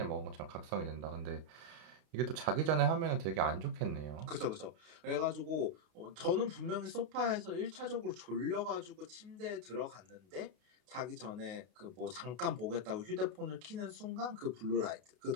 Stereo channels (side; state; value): left; late; 32 ms